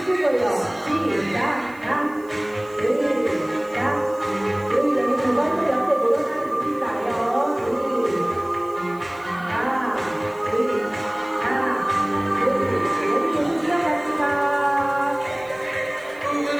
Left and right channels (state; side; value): noise; right; hiss, 27 dB below the sound